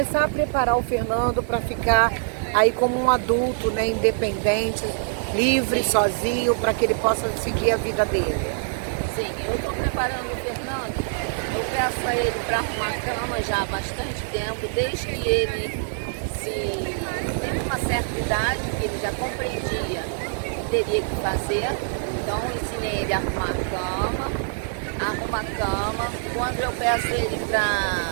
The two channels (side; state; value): left; silent; digital silence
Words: a preparar o Fernando para ficar aí como um adulto, né? Independente, livre, sozinho, para que ele possa seguir a vida dele? Sim, eu estou preparando o Fernando. Eu peço a ele para arrumar a cama já há bastante tempo, desde que ele teve uma certa idade, que ele já compreendia o que teria que fazer. Então eu ensinei ele a arrumar a cama. Quando eu peço ele para